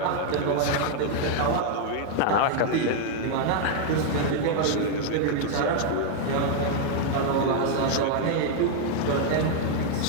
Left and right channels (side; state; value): both; different; correlation 0.00